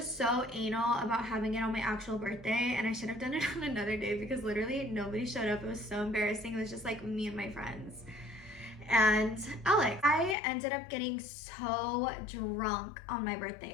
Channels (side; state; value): right; drops out; at 10.4 s